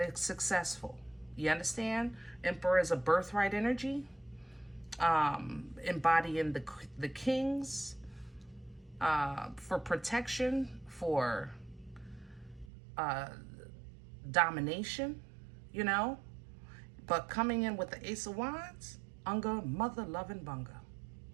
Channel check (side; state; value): left; drops out; at 12.7 s